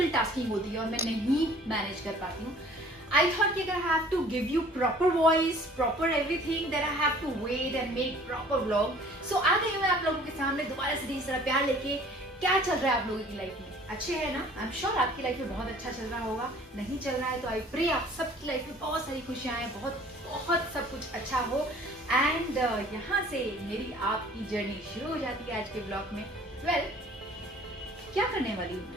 tasking होती है और मैं नहीं manage कर पाती हूँ. I thought कि अगर I have to give you proper voice, proper everything, then I have to wait and make proper vlog. So आ गई मैं आप लोगों के सामने दोबारा से ढेर सारा प्यार लेके. क्या चल रहा है आप लोगों की लाइफ में? अच्छे है ना? I'm sure आपकी लाइफ में बहुत अच्छा चल रहा होगा. नहीं चल रहा है तो I pray आप सबकी लाइफ में बहुत सारी खुशियाँ आए, बहुत सब कुछ अच्छा हो. एंड यहाँ से मेरी आपकी जर्नी शुरू हो जाती है आज के ब्लॉग में. वेल, क्या करने वाली हूँ?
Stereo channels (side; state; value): both; normal; correlation 0.52